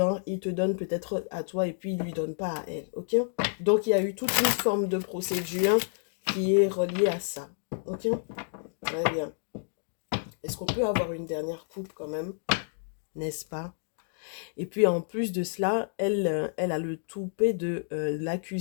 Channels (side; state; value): right; silent; digital silence